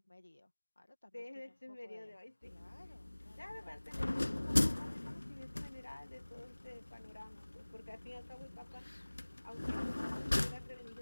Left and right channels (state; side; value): inverted; both; correlation -1.00